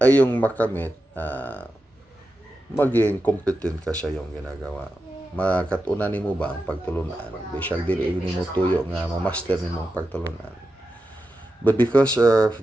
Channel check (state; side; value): normal; both; correlation 0.90